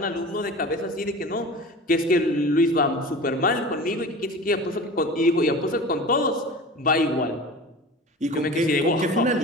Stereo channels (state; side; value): normal; both; correlation 0.36